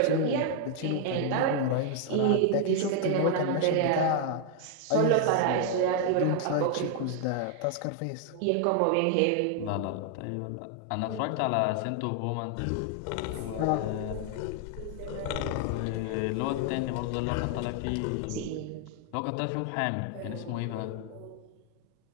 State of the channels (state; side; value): different; both; correlation 0.00